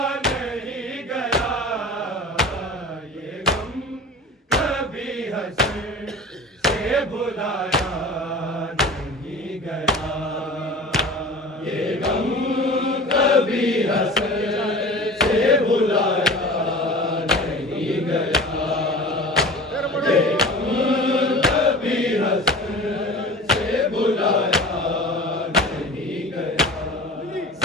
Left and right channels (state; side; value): normal; both; correlation 0.38